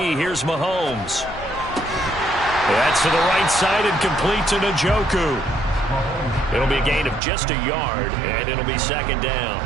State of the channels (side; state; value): left; drops out; at 7.2 s